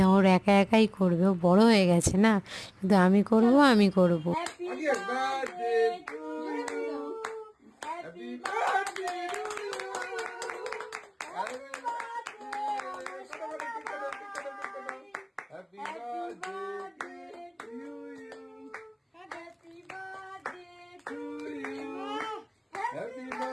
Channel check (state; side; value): identical; both; correlation 1.00